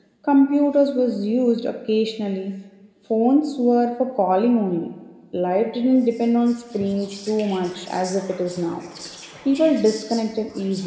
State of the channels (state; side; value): identical; both; correlation 1.00